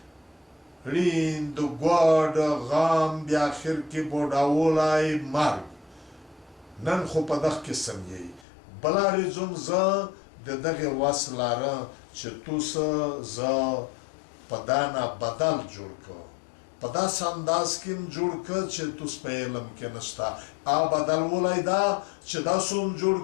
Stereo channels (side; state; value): right; drops out; at 8.5 s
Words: ریند ګوډ غم بیا اخر کې بوډاولی مرګ نن خو په دغه قسم یئ بله ریزم زه د دغې وس لرم چې توس زه په دا نه بدل جوړ کړم په داسې انداز کې م جوړ کړ چې توس په علم کې نشته او بدلولی دا چې داسې هم جوړ